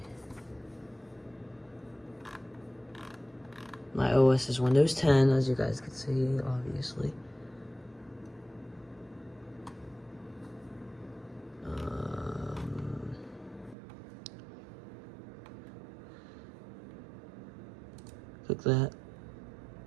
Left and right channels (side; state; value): left; drops out; at 13.8 s